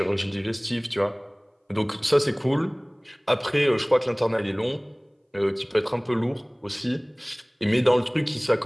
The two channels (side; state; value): both; identical; correlation 1.00